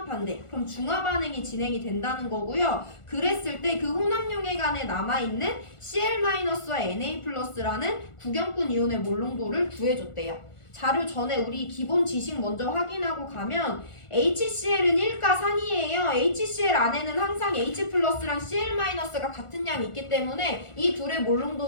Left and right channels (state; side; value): late; right; 1.4 ms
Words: 그럼 중화 반응이 진행이 된다는 거고요. 그랬을 때 그 혼합용액 안에 남아있는 Cl-와 Na+라는 구경꾼 이온의 몰롱도를 구해줬대요. 자료 전에 우리 기본 지식 먼저 확인하고 가면 HCl은 1가산이에요. HCl 안에는 항상 H+랑 Cl-가 같은 양이 있기 때문에 이 둘의